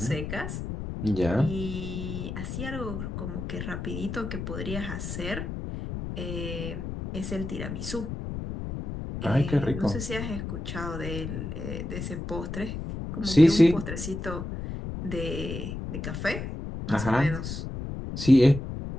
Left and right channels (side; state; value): left; noise; rumble, 6 dB below the sound